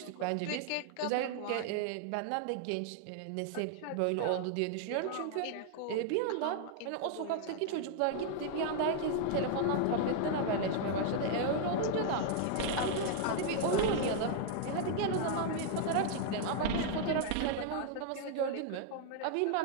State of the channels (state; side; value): different; both; correlation 0.00